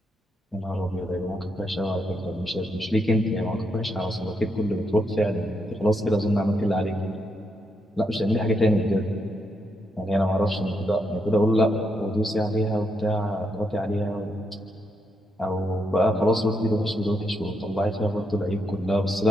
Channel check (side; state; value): both; normal; correlation 0.80